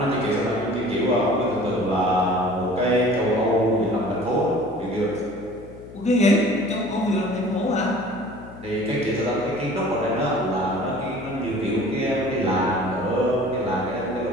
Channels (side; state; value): left; noise; hum, 17 dB below the sound